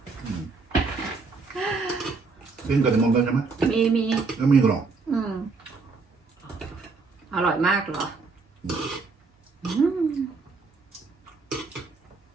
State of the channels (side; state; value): left; quieter; 4.3 dB